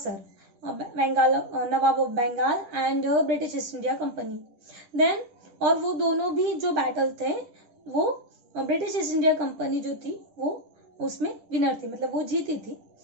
Bengal, nawab of Bengal and British East India Company. Then और वो दोनों भी जो बैटल थे वो ब्रिटिश ईस्ट इंडिया कंपनी जो थी वो उसमें विनर थी, मतलब वो जीती थी।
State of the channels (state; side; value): late; left; 10 ms